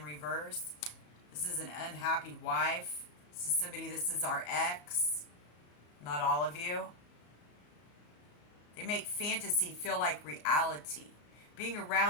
reverse, this is an unhappy wife. This is somebody, this is our ex, not all of you. They make fantasy feel like reality. Being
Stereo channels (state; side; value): late; right; 34 ms